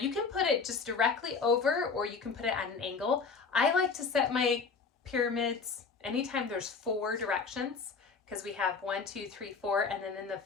can put it just directly over, or you can put it at an angle. I like to set my pyramids anytime there's 4 directions, because we have 1, 2, 3, 4, and then in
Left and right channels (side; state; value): right; quieter; 5.0 dB